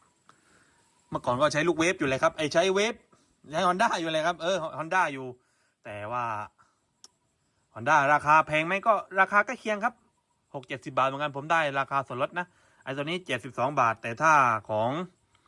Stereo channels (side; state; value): both; identical; correlation 1.00